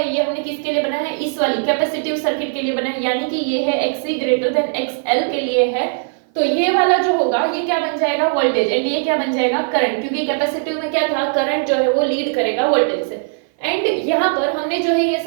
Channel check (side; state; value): left; silent; 56 dB below the other